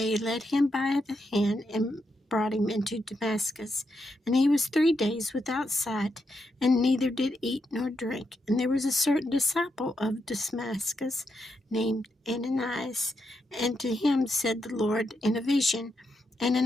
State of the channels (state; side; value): normal; both; correlation 0.83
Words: led him by the hand and brought him into Damascus. And he was 3 days without sight, and neither did eat nor drink. And there was a certain disciple of Damascus named Ananias, and to him said the Lord in a vision,